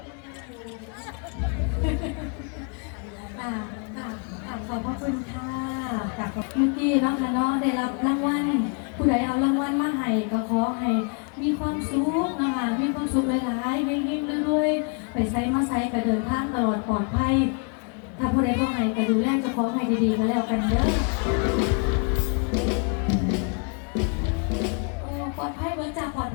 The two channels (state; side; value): quieter; right; 38.8 dB